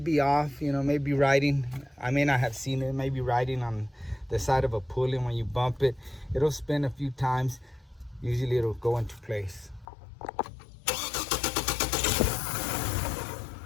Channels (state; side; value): drops out; right; at 9.9 s